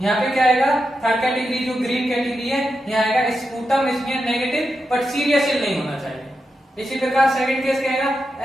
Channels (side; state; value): both; normal; correlation 0.87